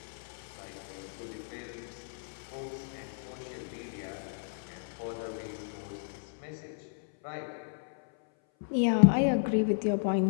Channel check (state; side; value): silent; right; 56 dB below the other